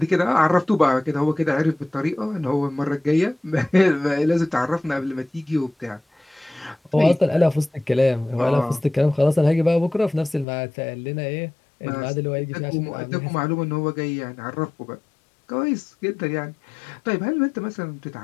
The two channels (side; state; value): right; drops out; at 10.5 s